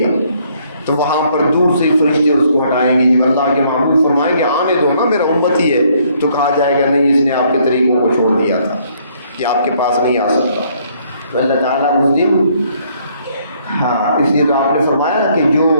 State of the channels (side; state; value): both; inverted; correlation -0.66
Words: تو وہاں پر دور سے فرشتے اس کو ہٹائیں گے۔ جب اللہ کے محبوب فرمائیں گے آنے دو نا میرا امت ہی ہے، تو کہا جائے گا نہیں، اس نے آپ کے طریقوں کو چھوڑ دیا تھا کہ آپ کے پاس نہیں آ سکتا۔ تو اللہ تعالیٰ اس دن اس لیے تو آپ نے فرمایا کہ جو